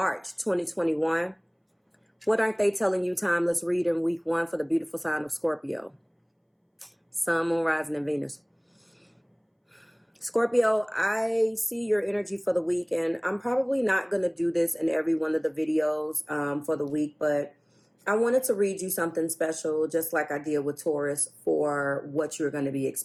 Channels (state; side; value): identical; both; correlation 1.00